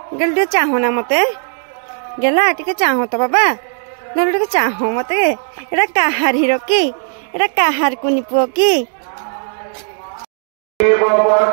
गेल टे चाहना मते गेला टिके चाहो तो बाबा गेल टिके चाहो मते। एडा काहार हिरो की एडा काहार कुनी पुओ की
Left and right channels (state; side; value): silent; left; 58 dB below the other